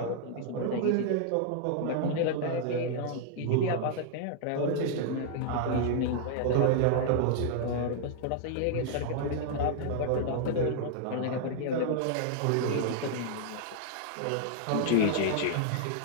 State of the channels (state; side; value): different; both; correlation -0.01